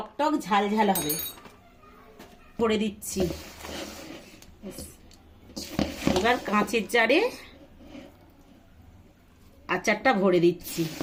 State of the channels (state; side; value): identical; both; correlation 1.00